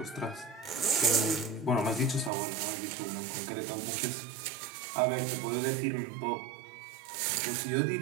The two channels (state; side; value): drops out; left; at 2.3 s